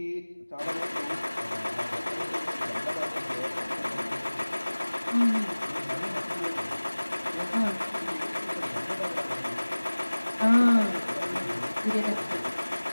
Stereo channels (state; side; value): inverted; both; correlation -1.00